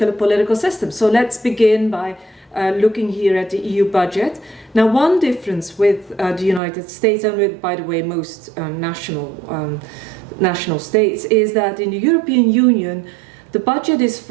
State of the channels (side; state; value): left; drops out; at 6.6 s